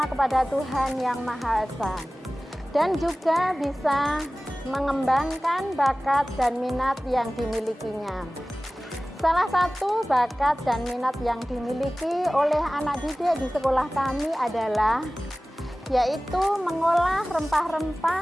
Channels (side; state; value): both; normal; correlation 0.98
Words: kepada Tuhan Yang Maha Esa, dan juga bisa mengembangkan bakat dan minat yang dimilikinya. Salah satu bakat dan minat yang dimiliki oleh anak didik di sekolah kami adalah yaitu mengolah